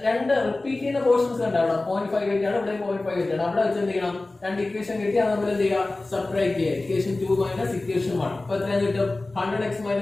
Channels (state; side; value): quieter; right; 3.1 dB